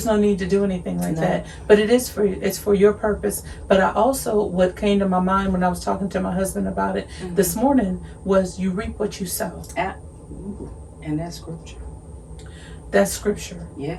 no need to do anything like that. But it's for your purpose. But I also, what came to my mind when I was talking to my husband about it this morning was, you reap what you sow. And that's scripture. That's scripture.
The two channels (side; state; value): both; identical; correlation 1.00